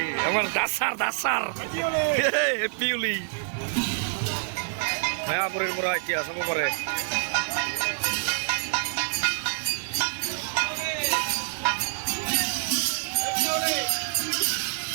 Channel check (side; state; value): left; silent; 59 dB below the other